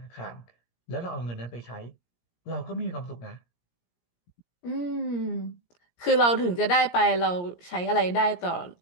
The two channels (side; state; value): right; late; 17 ms